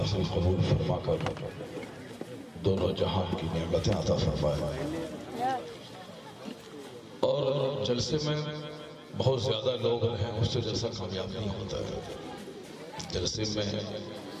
قبول فرما کر دونوں جہان کی نعمتیں عطا فرمائے۔ اور جلسے میں بہت زیادہ لوگ رہیں اس سے جلسہ کامیاب نہیں ہوتا ہے۔ جلسے میں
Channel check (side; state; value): both; identical; correlation 1.00